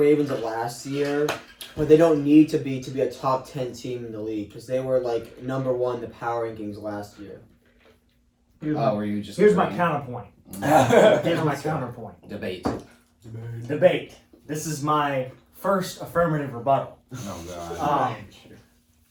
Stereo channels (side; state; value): both; identical; correlation 1.00